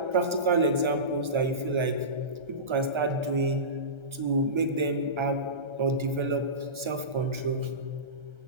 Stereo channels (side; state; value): left; late; 1.3 ms